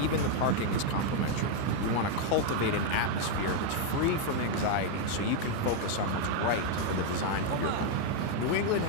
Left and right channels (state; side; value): different; both; correlation 0.00